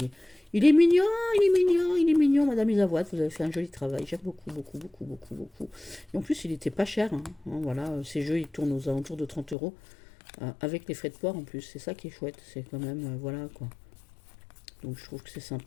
est mignon, il est mignon, il est mignon, Madame Isavoine, vous avez fait un joli travail, j'aime beaucoup, beaucoup, beaucoup, beaucoup, beaucoup. Et en plus, il était pas cher, hein, voilà, ces jeux, ils tournent aux alentours de 30 euros, avec les frais de port en plus, c'est ça qui est chouette, c'est quand même, voilà, quoi. Donc je trouve que c'est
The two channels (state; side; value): drops out; right; at 9.6 s